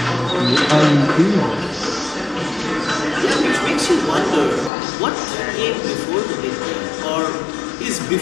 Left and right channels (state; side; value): drops out; right; at 4.7 s